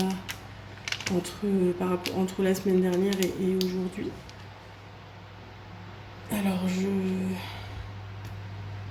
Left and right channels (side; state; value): both; identical; correlation 1.00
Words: entre la semaine dernière et aujourd'hui. Alors, je